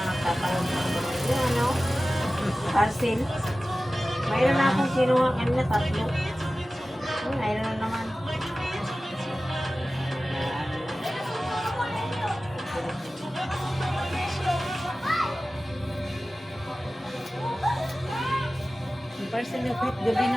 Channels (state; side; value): normal; both; correlation 0.96